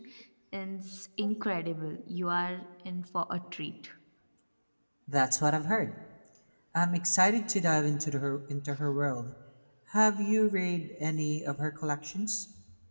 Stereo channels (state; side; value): inverted; both; correlation -1.00